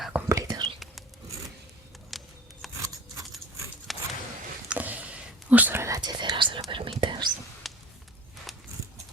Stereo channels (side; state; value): both; normal; correlation 0.40